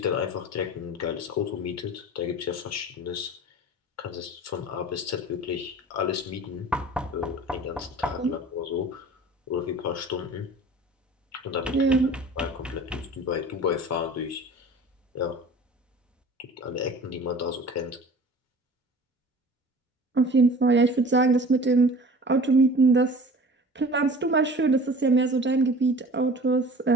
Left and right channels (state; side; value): normal; both; correlation 0.43